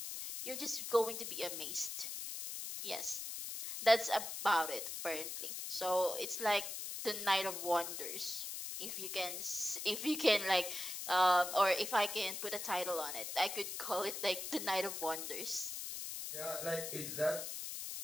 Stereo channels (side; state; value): left; noise; hiss, 5 dB below the sound